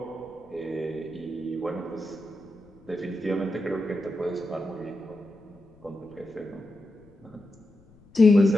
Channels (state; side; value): noise; left; rumble, 27 dB below the sound